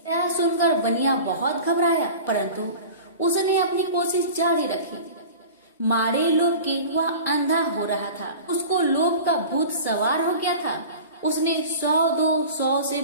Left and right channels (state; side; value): inverted; both; correlation -0.37